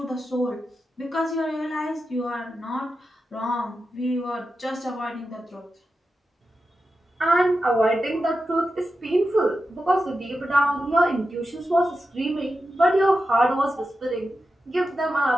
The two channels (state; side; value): normal; both; correlation 0.90